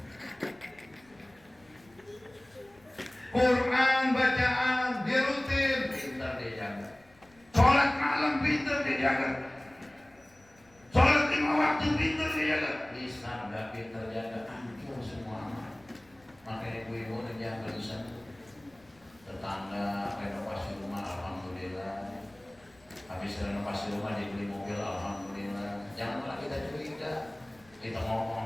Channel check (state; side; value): noise; left; rumble, 29 dB below the sound